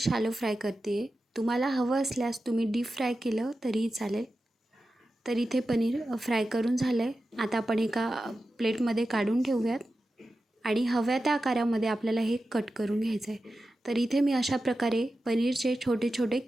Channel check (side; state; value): both; normal; correlation 0.92